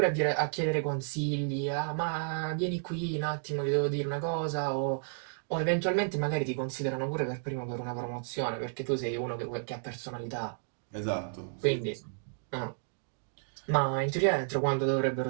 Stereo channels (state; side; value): silent; left; digital silence